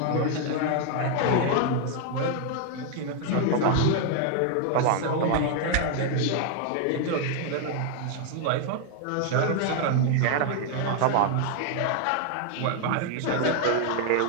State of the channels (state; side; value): different; both; correlation 0.00